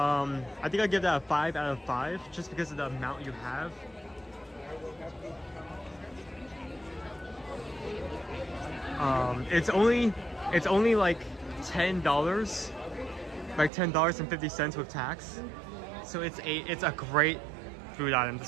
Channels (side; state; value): left; drops out; at 13.7 s